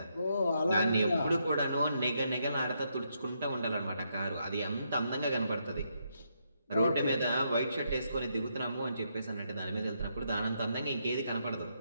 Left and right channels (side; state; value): both; inverted; correlation -0.78